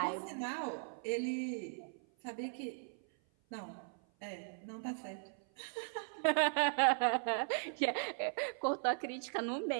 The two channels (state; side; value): silent; left; 52 dB below the other